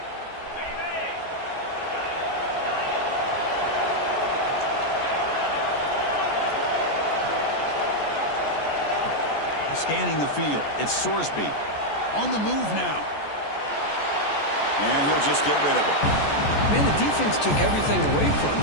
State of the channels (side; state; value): right; late; 14 ms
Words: Scanning the field. It's Sorsby. On the move now. And he'll just get rid of it. Man, the defense took everything away from